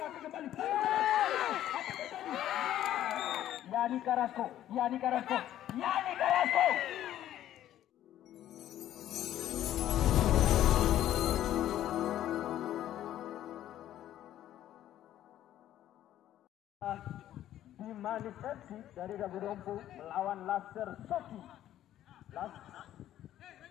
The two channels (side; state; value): right; quieter; 12.3 dB